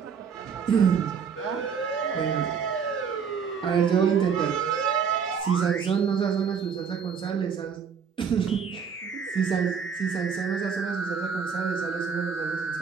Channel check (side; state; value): left; quieter; 6.6 dB